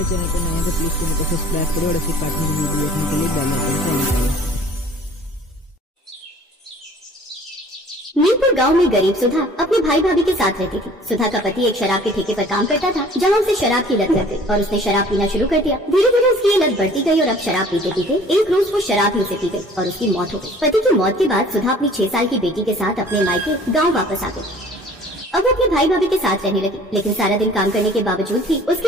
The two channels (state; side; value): normal; both; correlation 0.50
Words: चैनल पर नए हैं तो प्लीज चैनल को सब्सक्राइब करें और ऐसे कार्टून की वीडियो देखने के लिए बेल आइकन को ऑन करें। मीरपुर गांव में गरीब सुधा अपने भाई भाभी के साथ रहती थी। सुधा का पति एक शराब के ठेके पर काम करता था, जहां उसे शराब की लत लग गई और उसने शराब पीना शुरू कर दिया। धीरे धीरे उसकी ये लत बढ़ती गई और अब शराब पीते पीते एक रोज वो शराब ही उसे पी गई और उसकी मौत हो गई। पति की मौत के बाद सुधा अपनी 6 साल की बेटी के साथ अपने मायके गाँव वापस आ गई। अब वो अपने भाई भाभी के साथ रहने लगी, लेकिन सारा दिन काम करने के बावजूद भी